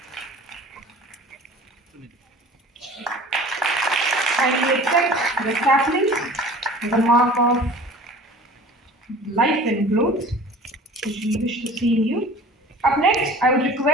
Kindly accept the sapling, the mark of life and growth, which we wish to see in you. Up next, I would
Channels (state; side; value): normal; both; correlation 0.44